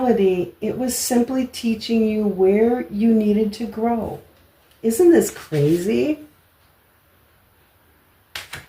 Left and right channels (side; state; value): both; identical; correlation 1.00